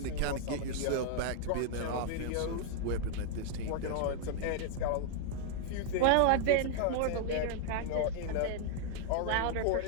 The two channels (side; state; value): both; different; correlation -0.01